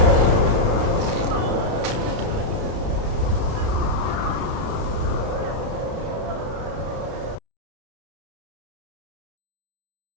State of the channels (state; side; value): late; left; 32 ms